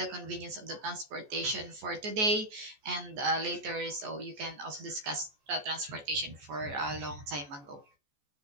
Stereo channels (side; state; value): left; late; 14 ms